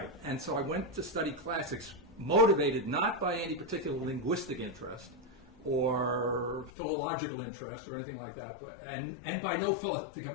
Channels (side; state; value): right; drops out; at 6.7 s